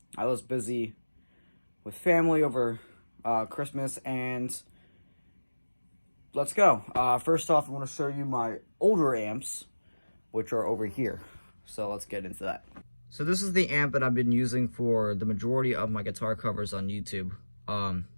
was busy with family over Christmas, and let's go. First off, I want to show you my older amps, which are over here. So let's get into that. So this is the amp that I've been using for the majority of my guitar covers on YouTube.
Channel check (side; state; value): both; inverted; correlation -1.00